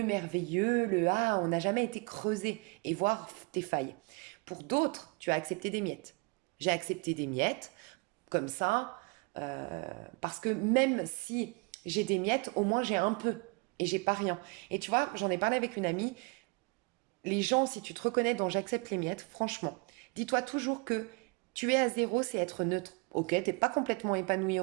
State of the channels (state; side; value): quieter; left; 30.0 dB